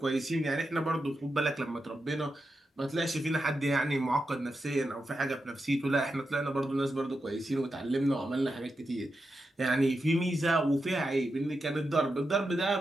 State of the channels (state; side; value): normal; both; correlation 0.88